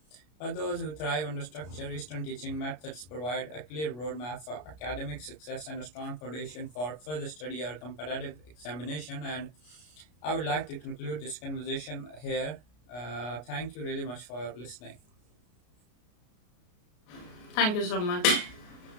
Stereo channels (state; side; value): late; right; 33 ms